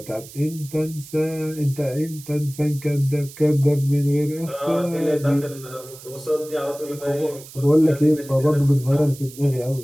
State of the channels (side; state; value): right; noise; hiss, 18 dB below the sound